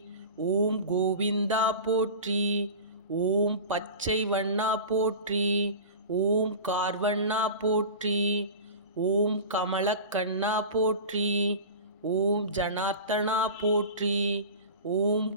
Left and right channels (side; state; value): both; inverted; correlation -0.33